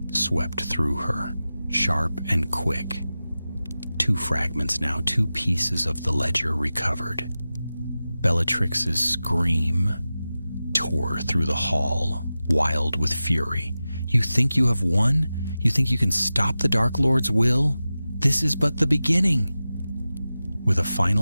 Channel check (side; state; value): both; inverted; correlation -0.95